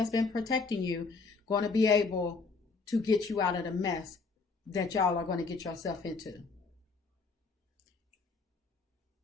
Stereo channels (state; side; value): quieter; right; 4.3 dB